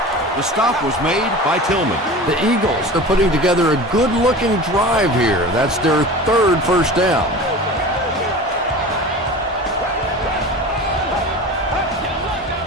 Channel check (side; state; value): both; normal; correlation 0.35